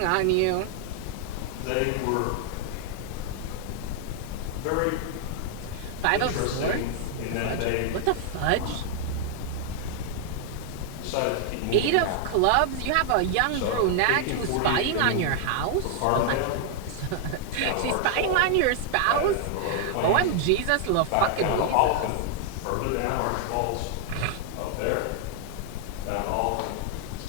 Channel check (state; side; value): different; both; correlation 0.00